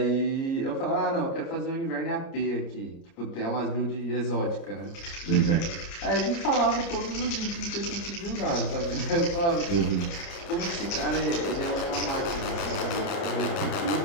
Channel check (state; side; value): late; right; 29 ms